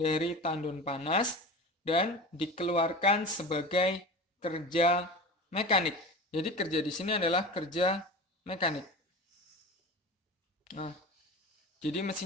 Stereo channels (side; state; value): both; normal; correlation 0.32